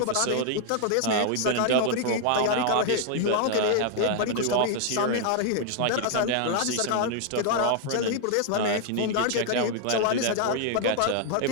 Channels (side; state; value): both; different; correlation 0.00